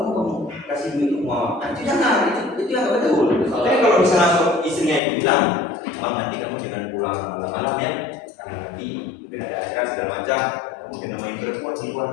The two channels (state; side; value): drops out; right; at 5.0 s